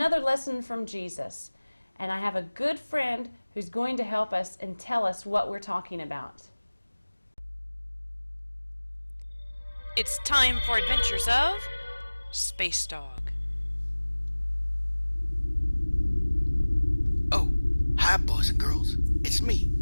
lesson from Jesus. And I have a good friend who's going to help us and tell us what we're talking about. It's time for Adventures of Space Dog. Oh, hi boys and girls. It's me,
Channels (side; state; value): both; inverted; correlation -1.00